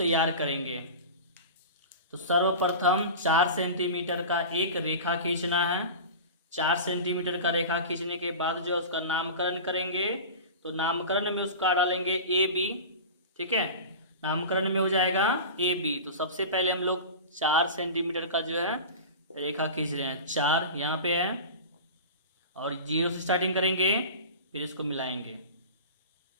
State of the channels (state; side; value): inverted; both; correlation -0.32